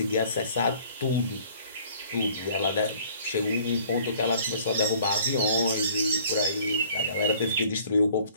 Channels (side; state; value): both; inverted; correlation -0.55